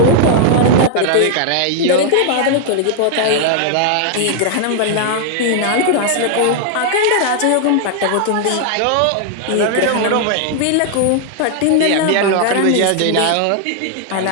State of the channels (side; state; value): both; different; correlation 0.00